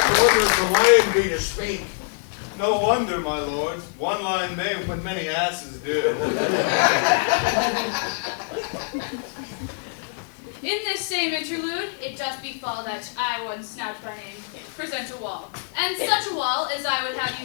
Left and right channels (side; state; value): right; silent; digital silence